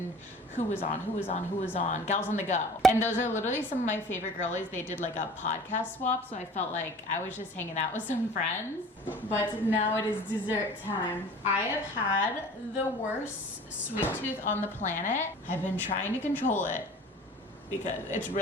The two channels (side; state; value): both; normal; correlation 0.44